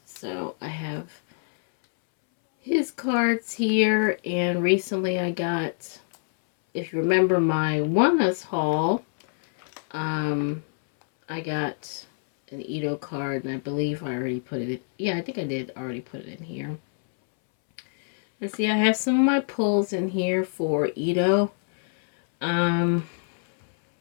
So I have his cards here, and recently I got, if you remember my Oneus haul, I got an Ito card, and I believe I already put it in. Yeah, I think I did already put it in here. Let's see, I have some of my pulls in here for Ito. There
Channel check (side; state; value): right; silent; 61 dB below the other